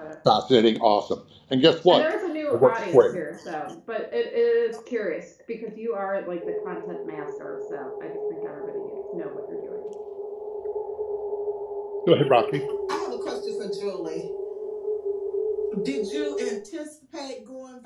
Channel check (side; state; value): both; identical; correlation 1.00